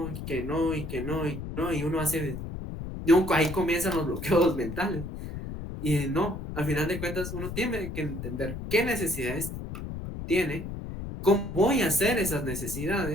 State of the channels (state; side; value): noise; left; rumble, 7 dB below the sound